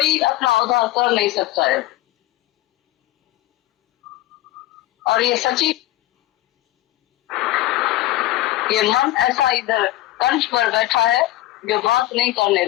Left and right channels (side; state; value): right; quieter; 16.2 dB